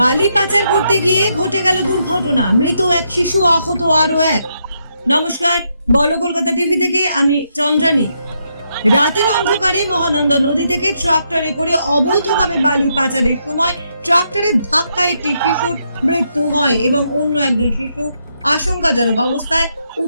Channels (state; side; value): inverted; both; correlation -0.78